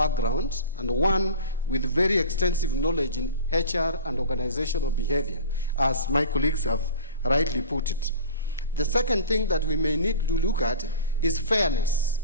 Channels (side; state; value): both; inverted; correlation -0.37